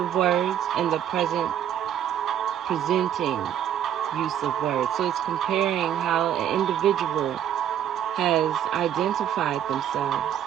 words and the present presenting use of words. So it's comparing how an individual has identified themselves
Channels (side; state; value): left; quieter; 10.0 dB